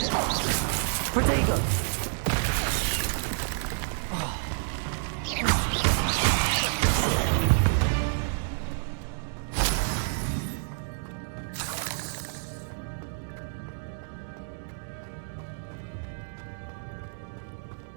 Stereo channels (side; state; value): left; silent; digital silence